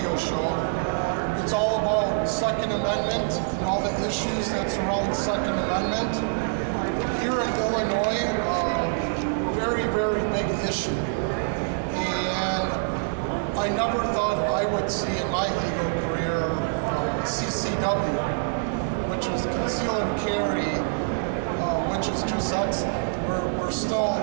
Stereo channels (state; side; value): silent; left; digital silence